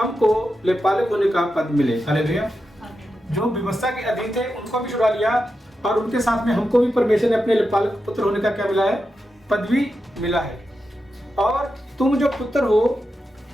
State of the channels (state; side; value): normal; both; correlation 0.89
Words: लेपालक होने का पद मिले। हालेलुया। जो व्यवस्था के अधीन थे उनको भी छुड़ा लिया और उनके साथ में हमको भी परमेश्वर ने अपने लेपालक पुत्र होने का क्या मिला है? पदवी मिला है। और तुम जो पुत्र हो,